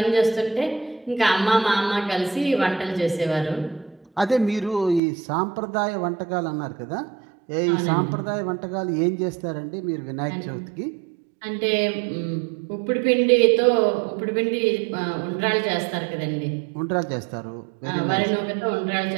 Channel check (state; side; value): drops out; left; at 5.0 s